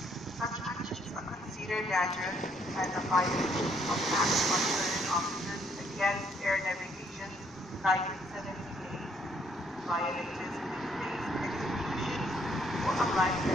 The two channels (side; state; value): both; normal; correlation 0.68